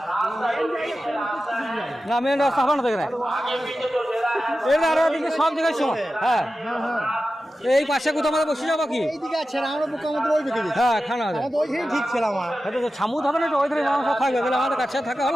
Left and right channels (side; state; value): both; normal; correlation 0.93